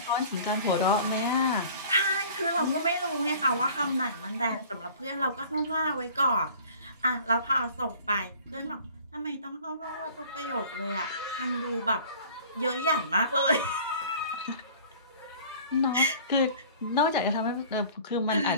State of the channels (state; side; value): inverted; both; correlation -0.47